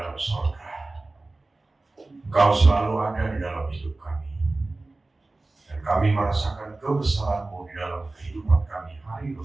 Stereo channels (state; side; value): quieter; left; 3.1 dB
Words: dalam surga. Engkau selalu ada di dalam hidup kami. Dan kami merasakan kebesaran-Mu di dalam kehidupan kami hari